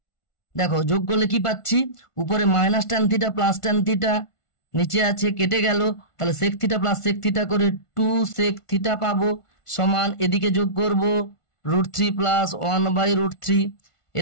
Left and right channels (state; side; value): late; right; 1.5 ms